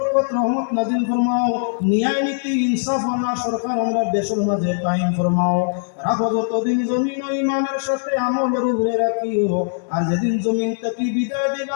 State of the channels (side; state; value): right; silent; 65 dB below the other